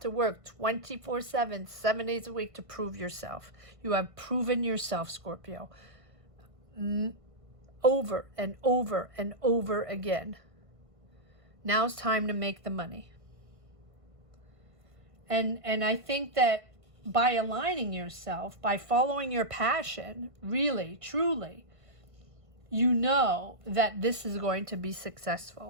to work 24/7, 7 days a week to prove yourself. You have proven yourself, Scorpio, over and over and over again. Now it's time to make the money. And I think that by aligning yourself, by following your passion, really, truly, you know that this is going to be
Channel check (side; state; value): left; late; 1.5 ms